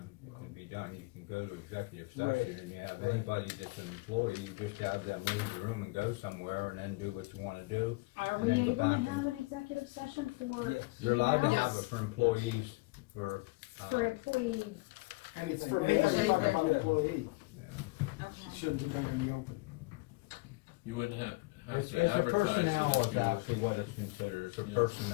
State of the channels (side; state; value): right; quieter; 24.8 dB